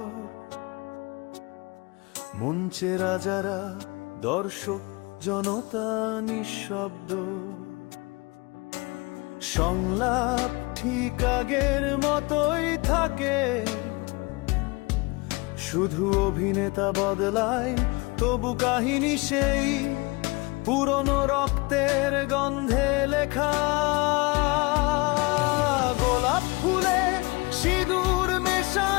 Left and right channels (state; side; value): quieter; right; 26.3 dB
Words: মঞ্চে রাজারা, দর্শক জনতা নিঃশব্দ। সংলাপ ঠিক আগের মতোই থাকে, শুধু অভিনেতা বদলায়, তবু কাহিনী সেই পুরনো রক্তের গন্ধে লেখা। গোলাপ ফুলে সিঁদুর